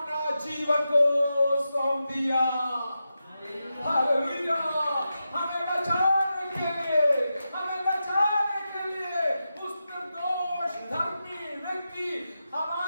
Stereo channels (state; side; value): inverted; both; correlation -0.89